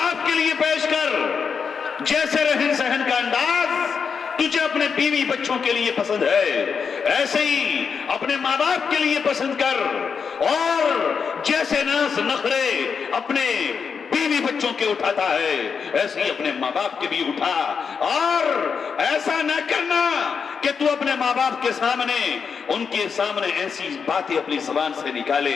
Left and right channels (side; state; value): right; quieter; 6.1 dB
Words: کے لیے پیش کر۔ جیسے رہن سہن کا انداز تجھے اپنے بیوی بچوں کے لیے پسند ہے، ایسے ہی اپنے ماں باپ کے لیے پسند کر، اور جیسے ناز نخرے اپنے بیوی بچوں کے اٹھاتا ہے ایسے ہی اپنے ماں باپ کے بھی اٹھا۔ اور ایسا نہ کرنا کہ تو اپنے ماں باپ کے سامنے، ان کے سامنے ایسی باتیں اپنی زبان سے